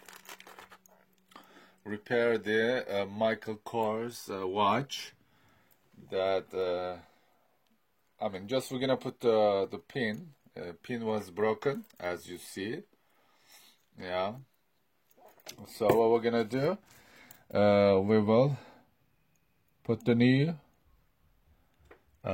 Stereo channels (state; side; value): identical; both; correlation 1.00